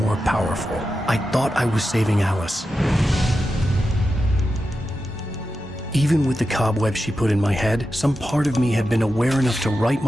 powerful. I thought I was saving Alice. Even with the cobwebs she put in my head, some part of me had been aware enough to write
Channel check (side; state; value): both; normal; correlation 0.90